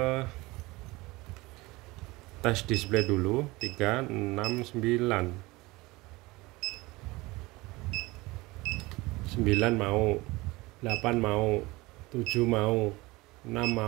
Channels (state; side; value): quieter; left; 21.7 dB